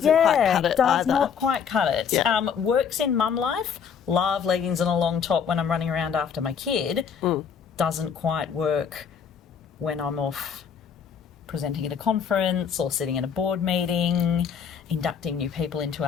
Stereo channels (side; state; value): right; quieter; 7.2 dB